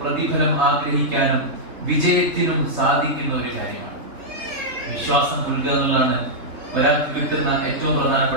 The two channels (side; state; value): left; late; 3.6 ms